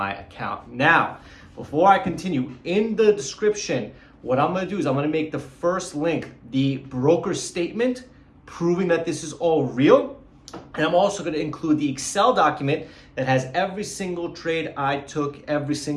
account. Now, before I continue, in the description, what I'm gonna do is I'm gonna make the first link the broker statement proving that this is all real. And I'm also gonna include the Excel document that has every single trade I took every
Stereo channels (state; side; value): identical; both; correlation 1.00